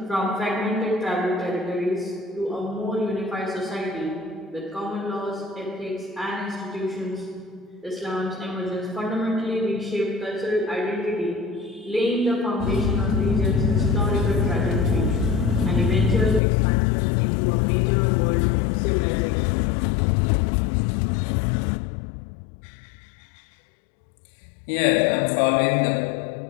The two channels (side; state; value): right; drops out; at 16.4 s